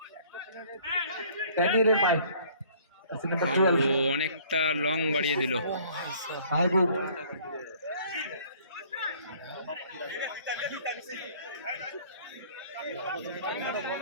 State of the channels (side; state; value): both; inverted; correlation -0.56